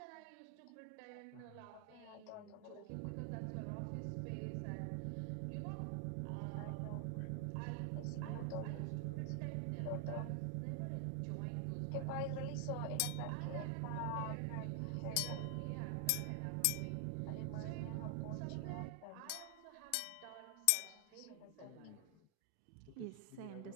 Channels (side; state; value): both; different; correlation 0.00